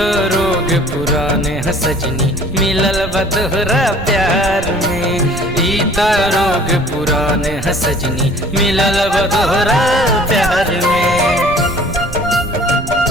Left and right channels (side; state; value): right; noise; rumble, 11 dB below the sound